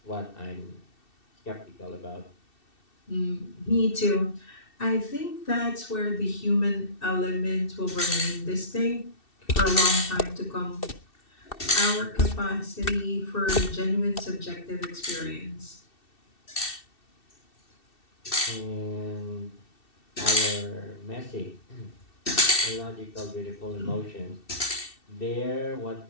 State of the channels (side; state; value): right; late; 2.7 ms